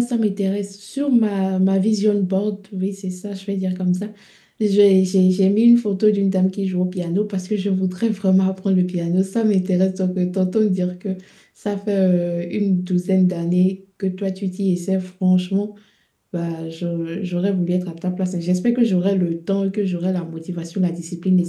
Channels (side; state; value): both; identical; correlation 1.00